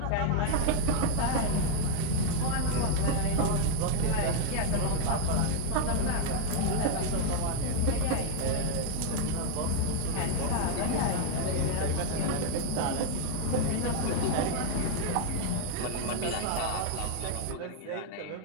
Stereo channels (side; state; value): both; different; correlation 0.00